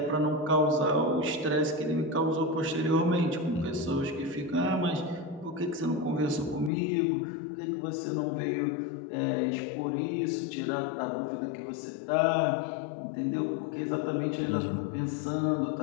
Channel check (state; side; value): drops out; right; at 6.7 s